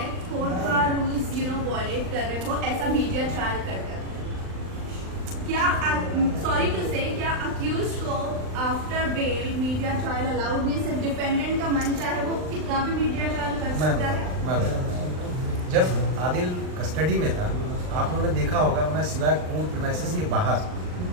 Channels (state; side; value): late; left; 39 ms